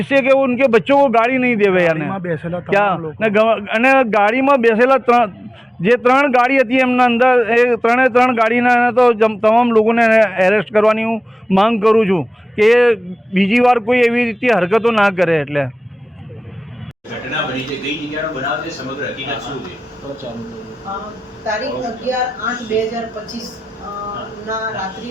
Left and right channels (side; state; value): both; normal; correlation 0.96